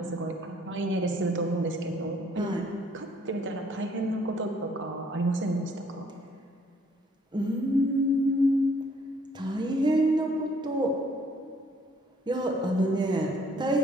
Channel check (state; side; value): normal; both; correlation 0.63